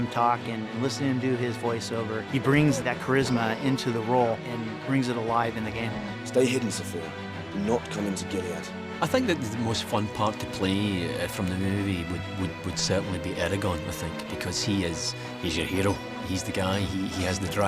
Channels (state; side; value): identical; both; correlation 1.00